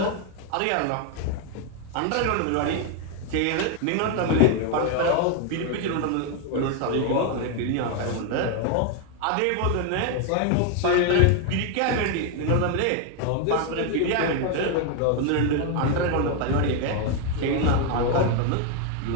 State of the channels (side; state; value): both; different; correlation 0.01